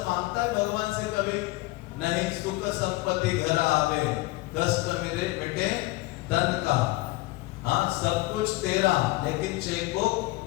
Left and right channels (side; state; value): right; quieter; 20.5 dB